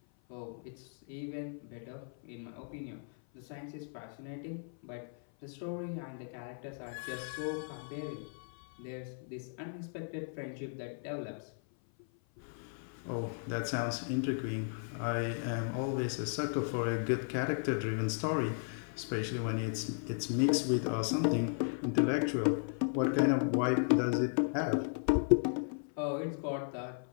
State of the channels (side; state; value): right; silent; 54 dB below the other